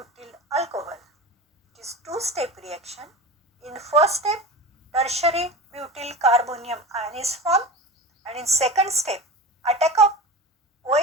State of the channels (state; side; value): normal; both; correlation 0.31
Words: alcohol. It is two-step reaction. In first step, tertiary butyl carbonium ion is formed, and in second step, attack of